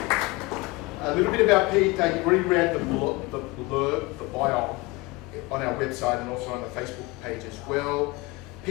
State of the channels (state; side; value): quieter; right; 23.1 dB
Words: A little bit about Pete. You've already read the blurb, the bio on our website and also on the Facebook page as well.